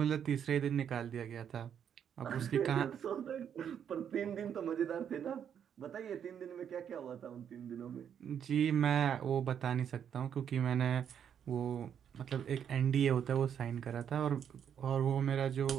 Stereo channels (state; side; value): quieter; left; 8.5 dB